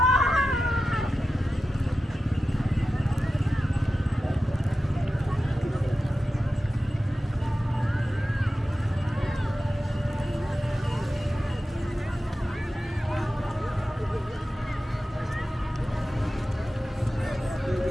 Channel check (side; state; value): both; normal; correlation 0.92